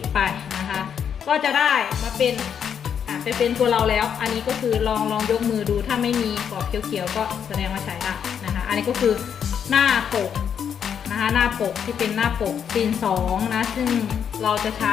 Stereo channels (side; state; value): right; quieter; 8.0 dB